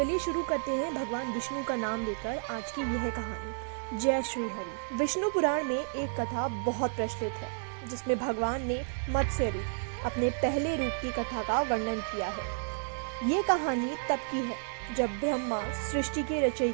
शुरू करते हैं भगवान विष्णु का नाम लेकर आज की यह कहानी। जय श्री हरि। विष्णु पुराण में एक कथा बहुत प्रचलित है जिसमें भगवान ने मत्स्य रूप, अपने पहले रूप की कथा का वर्णन किया है। ये कहानी तब की है जब ब्रह्मा सृष्टि के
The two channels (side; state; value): left; silent; digital silence